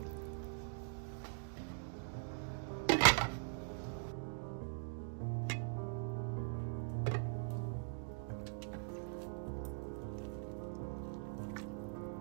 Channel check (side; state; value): left; silent; digital silence